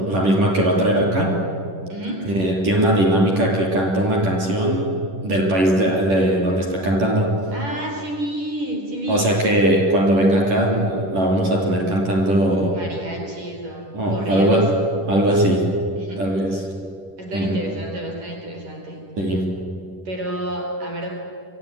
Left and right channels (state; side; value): late; left; 10 ms